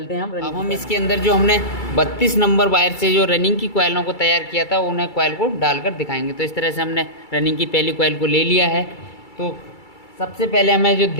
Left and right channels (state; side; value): late; right; 2.3 ms